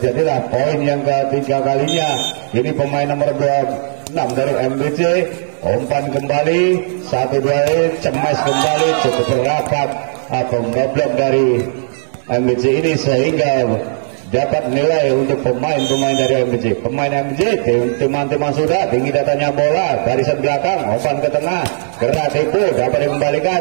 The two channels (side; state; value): left; silent; digital silence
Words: poin yang ketiga kalinya. Ini pemain nomor 26 dari MBC, umpan kembali, 1-2, cemes kembali, cukup rapat, pemboblok dari MBC ini sehingga dapat nilai untuk pemain-pemain dari MBC. Pemain MBC, teman-teman sudah, tinggi datanya bola, barisan belakang, umpan ke tengah, gerak tipu, dapat